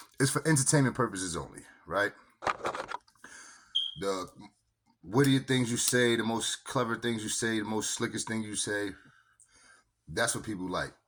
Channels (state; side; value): identical; both; correlation 1.00